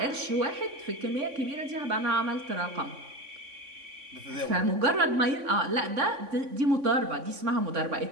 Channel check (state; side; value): late; left; 3.5 ms